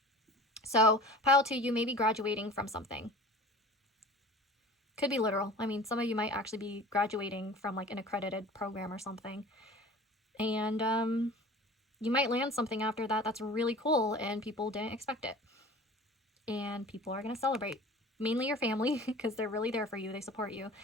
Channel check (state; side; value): normal; both; correlation 0.41